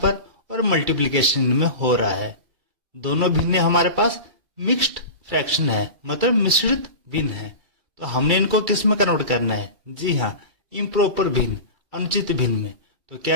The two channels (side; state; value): left; late; 2.3 ms